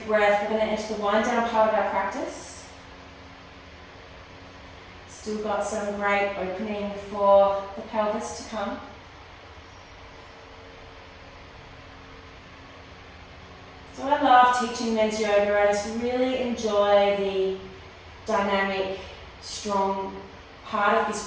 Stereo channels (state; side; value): identical; both; correlation 1.00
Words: breath. We're going to enter the wind down part of our practice. Still got some great opening for the pelvis to come. So I love teaching men's yoga. I just really enjoy the dynamic, strong part of this